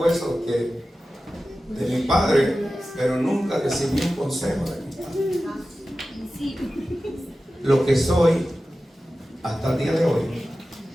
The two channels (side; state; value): both; normal; correlation 0.94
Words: de mi padre, pero nunca recibí un consejo de mi padre. Lo que soy hasta el día de hoy